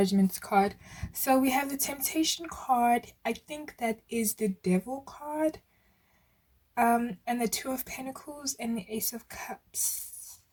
card. So we have the Temptation card. I think that is the Devil card. And the 2 of Pentacles and the Ace of Cups.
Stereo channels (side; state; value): both; identical; correlation 1.00